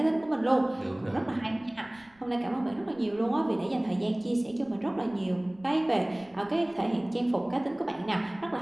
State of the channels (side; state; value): right; noise; rumble, 29 dB below the sound